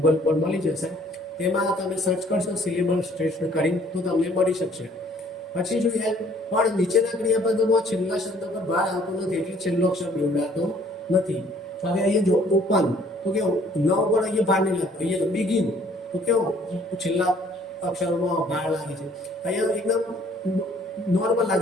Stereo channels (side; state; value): both; normal; correlation 0.59